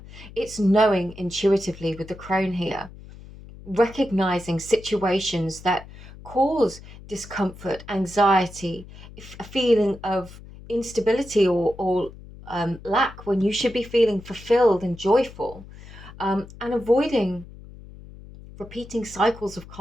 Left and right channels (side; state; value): left; noise; hum, 17 dB below the sound